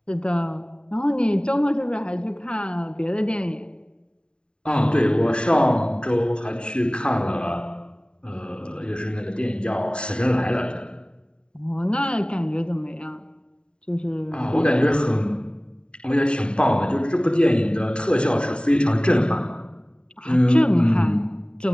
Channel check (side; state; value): right; late; 0.050 ms